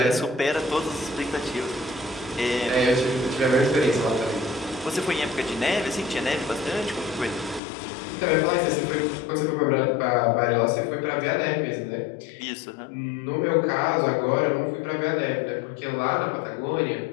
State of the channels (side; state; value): right; drops out; at 7.6 s